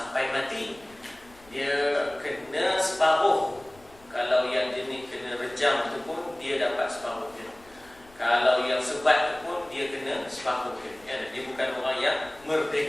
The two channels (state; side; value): noise; left; rumble, 27 dB below the sound